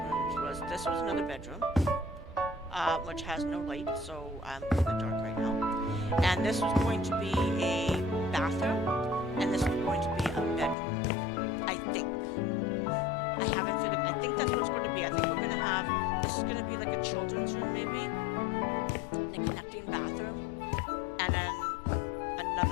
rooms, was this was another bedroom, which has no light, so I'm in the dark right now. And this was going to be a bathroom, and this was going to be a bedroom, I think. I haven't figured. I think that's what it's going to be. I think we're going to have. This is going to be like a children's room, maybe. The connecting bathroom, and then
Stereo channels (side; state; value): right; drops out; at 10.8 s